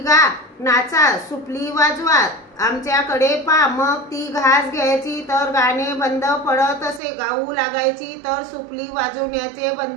नाचा, सुपली वाजवा, आमच्याकडे पा। मग ती घास घ्यायची तर गाणे बंद पडत असे, गाऊ लागायची तर सुपली वाजवण्याचे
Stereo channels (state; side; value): drops out; left; at 7.0 s